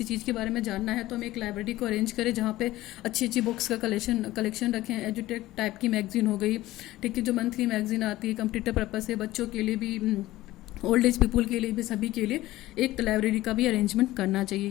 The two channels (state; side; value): quieter; right; 16.6 dB